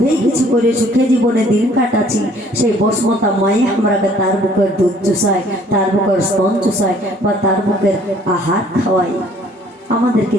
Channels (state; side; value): normal; both; correlation 0.58